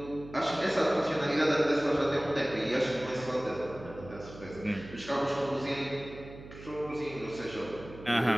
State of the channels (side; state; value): right; noise; hum, 15 dB below the sound